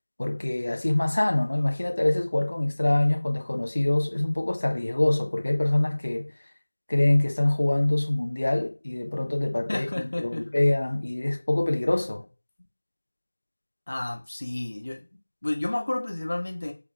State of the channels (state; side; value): inverted; both; correlation -1.00